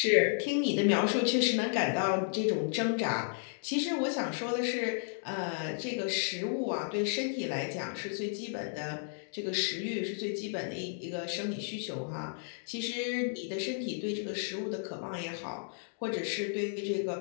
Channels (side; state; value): right; silent; digital silence